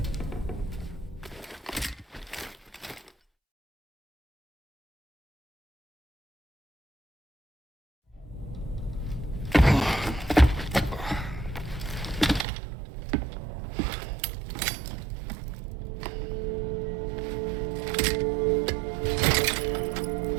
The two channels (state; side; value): drops out; left; at 12.5 s